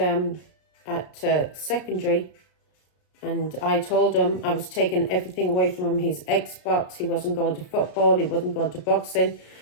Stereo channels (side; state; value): right; late; 33 ms